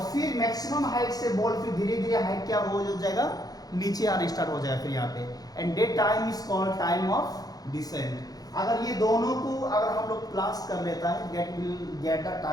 फिर मैक्सिमम हाइट से बॉल फिर धीरे धीरे हाइट क्या हो जाएगा, नीचे आना स्टार्ट हो जाएगा फिर यहाँ पे, and that time is called time of descent. अगर ये दोनों को अगर हम लोग प्लस कर लेता है, get will get the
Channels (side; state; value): right; late; 0.18 ms